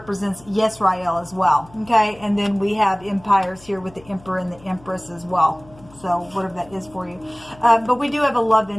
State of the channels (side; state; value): left; noise; hum, 24 dB below the sound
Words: Yisrael as well. Okay, and then we have empires here with the emperor and the empress as well. So whatever that is for you. But we do have a love